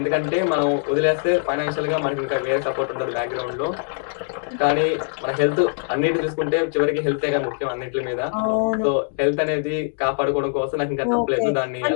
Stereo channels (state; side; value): silent; right; digital silence